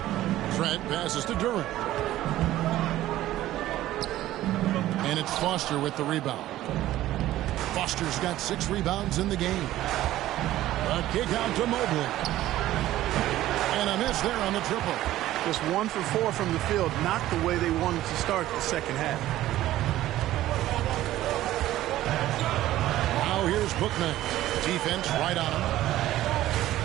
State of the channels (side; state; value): left; quieter; 14.6 dB